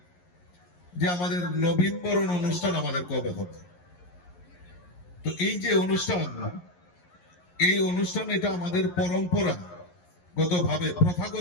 যে আমাদের নবীনবরণ অনুষ্ঠান আমাদের কবে হবে। তো এই যে অনুষ্ঠান, এই অনুষ্ঠান এটা আমাদের পরম্পরাগত ভাবে,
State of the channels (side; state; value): right; late; 11 ms